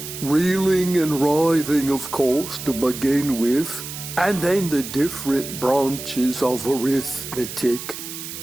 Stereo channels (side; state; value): right; noise; hiss, 9 dB below the sound